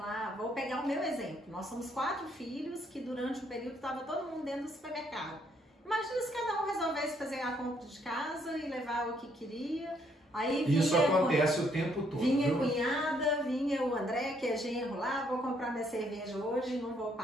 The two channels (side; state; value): both; normal; correlation 0.70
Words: vou pegar o meu exemplo, nós somos 4 filhos que durante um período estava todo mundo dentro do supermercado. Imagina se cada um resolvesse fazer a compra de casa e levar o que queria. Aí isso acontece o tempo todo. Vinha a cunhada, vinha o André, que é genro lá, vou comprar minha cerveja hoje, não vou